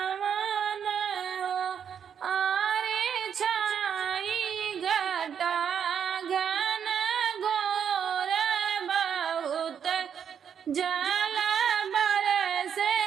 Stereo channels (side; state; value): left; quieter; 8.0 dB